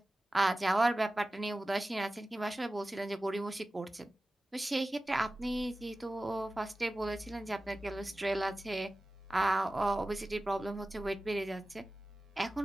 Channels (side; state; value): both; normal; correlation 0.96